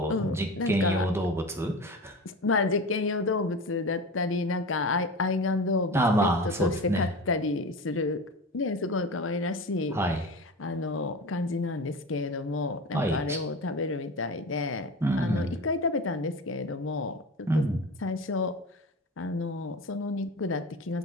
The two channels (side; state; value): both; normal; correlation 0.30